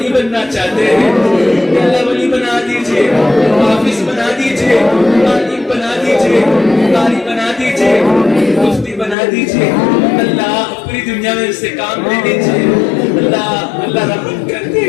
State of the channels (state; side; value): drops out; right; at 9.2 s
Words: بننا چاہتے ہیں، یا اللہ ولی بنا دیجیے، حافظ بنا دیجیے، عالم بنا دیجیے، قاری بنا دیجیے، مفتی بنا دیجیے، اللہ پوری دنیا میں اس سے کام لے لیجیے۔ اللہ اللہ رحم کر دے،